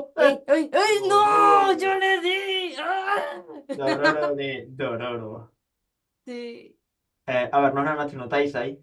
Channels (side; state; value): both; identical; correlation 1.00